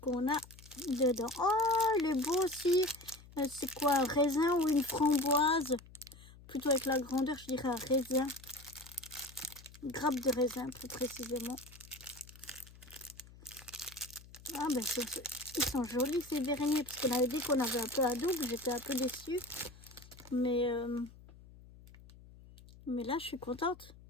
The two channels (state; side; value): noise; left; hum, 21 dB below the sound